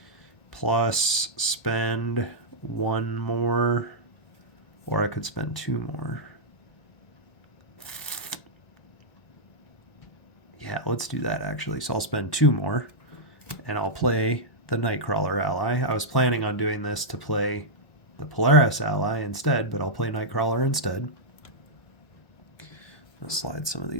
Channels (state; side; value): late; right; 1.1 ms